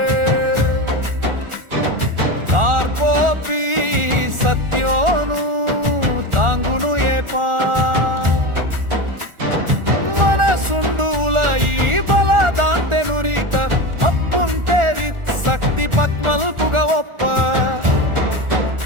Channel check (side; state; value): left; late; 1.4 ms